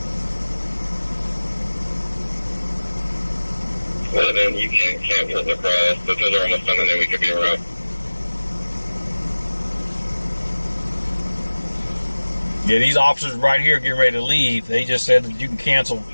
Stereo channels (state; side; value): inverted; both; correlation -1.00